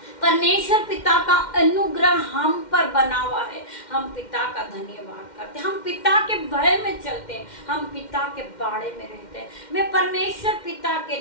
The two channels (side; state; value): right; late; 2.1 ms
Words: परमेश्वर पिता का अनुग्रह हम पर बना हुआ है, हम पिता का धन्यवाद करते हैं। हम पिता के भय में चलते हैं, हम पिता के बाड़े में रहते हैं। मैं परमेश्वर पिता के